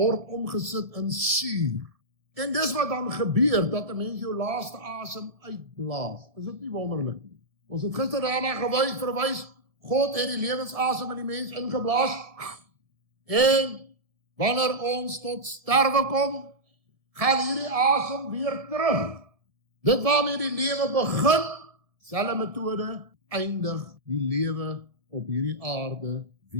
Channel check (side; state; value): left; late; 1.7 ms